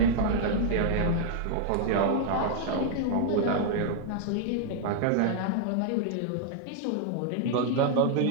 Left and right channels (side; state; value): both; different; correlation -0.01